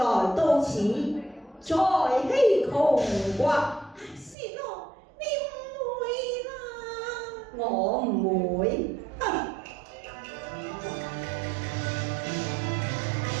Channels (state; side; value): drops out; left; at 4.4 s